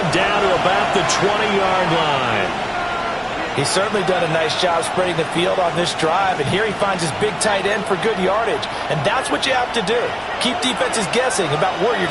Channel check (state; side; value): identical; both; correlation 1.00